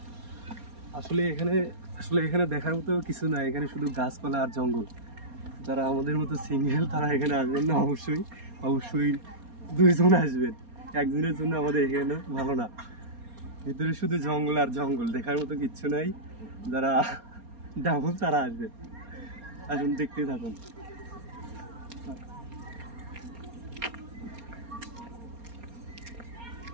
আসলে এখানে দেখার মতো কিছু না, এখানে শুধু গাছপালা আর জঙ্গল। যারা আমাদের মতো সিঙ্গেল তারা এখানে আসবেন না, অবশ্যই দুইজন আসবেন। একজনের জন্য আমাদের এখানে ভালো না। ভিতরে শুধু জঙ্গল আর জঙ্গল, দেখার মতো কিচ্ছু নাই। যারা ডাবল তারা আসবে, আসুন দেখতেই থাকুন।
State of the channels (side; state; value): left; late; 4.3 ms